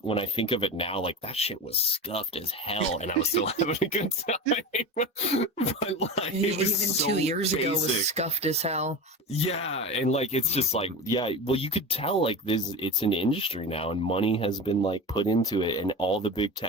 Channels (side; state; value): both; normal; correlation 0.27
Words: when I think of it now, like that shit was scuffed as hell, and I was still having a good time. But like it was Even so 2 years ago was basic. scuffed as hell. Yeah, and like it's just like, yeah, well, you could tell like this, it's an industry now, and money has been like put into it, and all the big